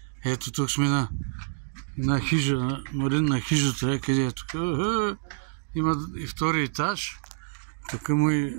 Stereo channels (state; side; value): silent; left; digital silence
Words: Ето тук сме на хижа, Марин на хижата, къде е тук. Има и втори етаж. Тук му и